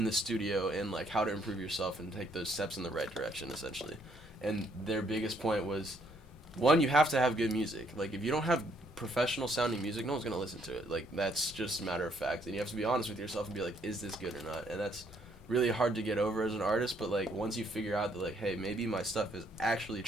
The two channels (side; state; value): both; normal; correlation 0.69